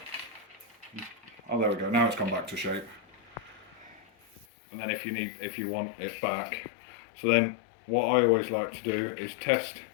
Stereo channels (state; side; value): drops out; right; at 4.5 s